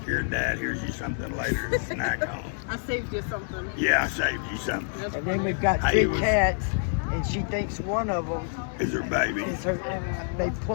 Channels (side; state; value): right; silent; 59 dB below the other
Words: your dad. Here's you something later to snack on. I saved you something. Yeah, I saved you something. That's And then funny. we've got Hey, two was- cats, and she thinks one of them Is her baby? is her. They